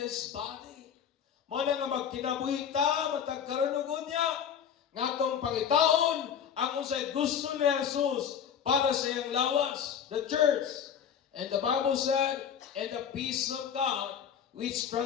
body. Muna nga magkinabuhi ta, matagkaroon niya, nga itong pangitaon, ang unsay gusto ni Jesus para sa iyang lawas, the church. And the Bible said, and the peace of God, which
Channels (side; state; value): right; quieter; 8.2 dB